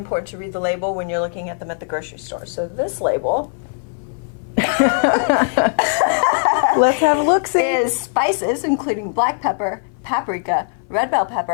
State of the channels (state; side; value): silent; right; 59 dB below the other